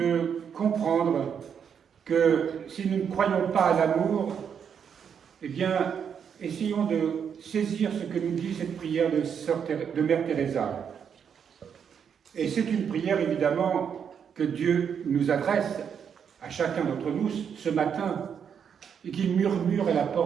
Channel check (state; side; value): quieter; left; 7.5 dB